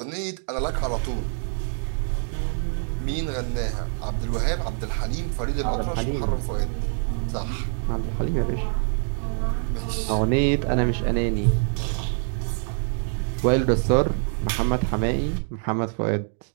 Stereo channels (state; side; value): silent; left; digital silence